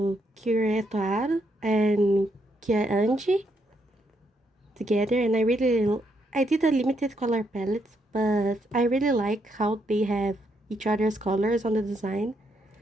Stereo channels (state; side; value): normal; both; correlation 0.76